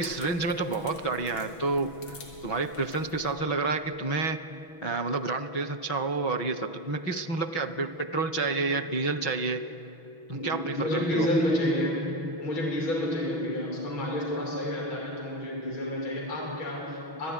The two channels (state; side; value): late; right; 6.1 ms